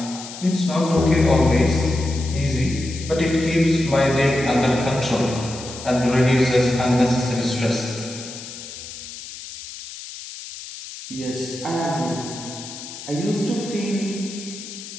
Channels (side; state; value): left; noise; hiss, 12 dB below the sound